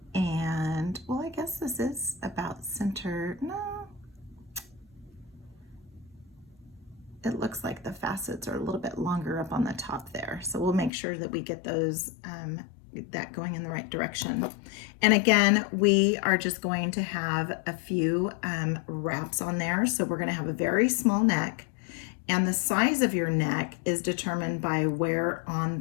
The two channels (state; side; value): drops out; right; at 10.9 s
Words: And, well, I guess this is about center. No. It looks like the facets are a little bit longer up on the top there. So we'll make sure that we get those, that going in the right direction. And again, we are just going to have a few wraps on there. So we're going to have a very small neck. And the size of your neck is determined by where on